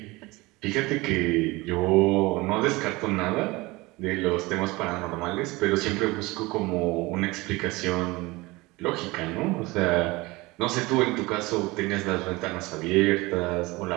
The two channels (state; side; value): quieter; left; 22.3 dB